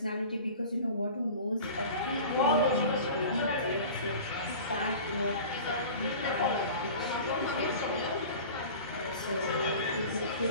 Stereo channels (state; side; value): inverted; both; correlation -0.39